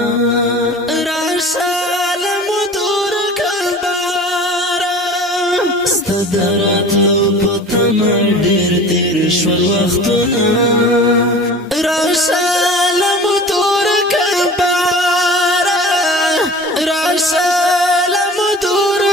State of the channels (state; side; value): normal; both; correlation 0.40